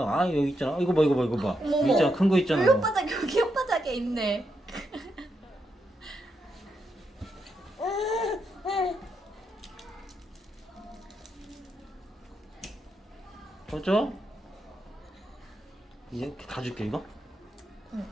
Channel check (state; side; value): normal; both; correlation 0.82